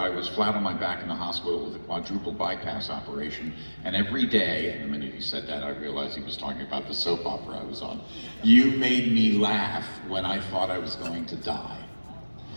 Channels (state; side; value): inverted; both; correlation -1.00